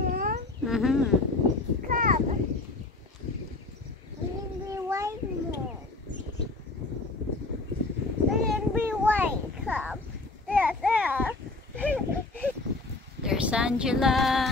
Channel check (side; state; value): right; quieter; 3.3 dB